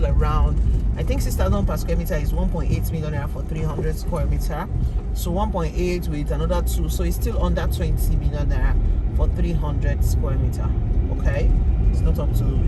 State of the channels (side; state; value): both; identical; correlation 1.00